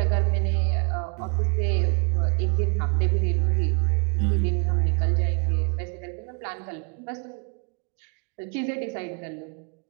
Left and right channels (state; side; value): quieter; left; 33.9 dB